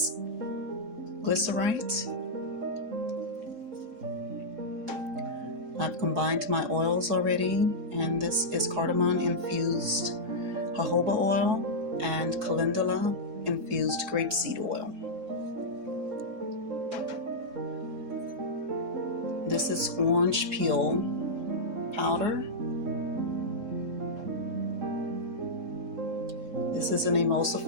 Glycerite. I've combined my oils already, and this is Cardamon Infused Jojoba oil and Calendula Infused Grapeseed oil. This is orange peel powder. This is an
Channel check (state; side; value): late; left; 3.6 ms